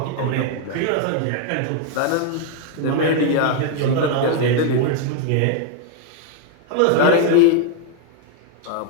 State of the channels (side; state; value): both; different; correlation 0.00